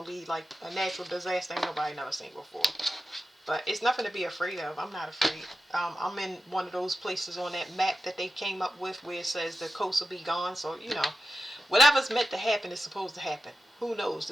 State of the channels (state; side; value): normal; both; correlation 0.91